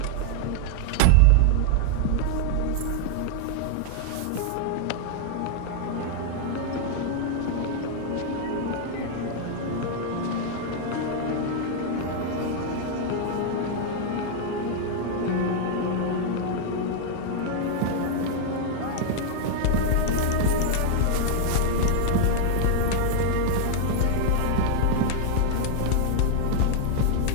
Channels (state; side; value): different; both; correlation 0.00